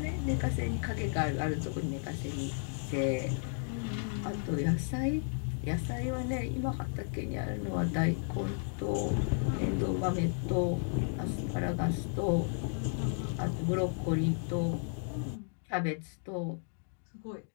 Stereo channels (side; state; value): right; silent; 55 dB below the other